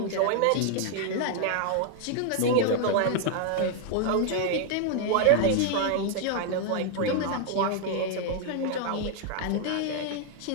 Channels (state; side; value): different; both; correlation 0.00